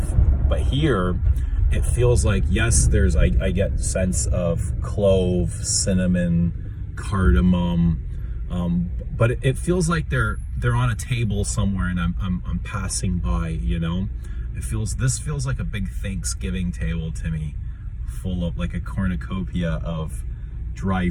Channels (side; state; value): both; identical; correlation 1.00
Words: But here it feels like, yes, there's, I get sense of clove, cinnamon, cardamom, but it feels like they're on a table somewhere, and I'm passing by, you know. This feels like a big Thanksgiving table to me, full of like a cornucopia of dry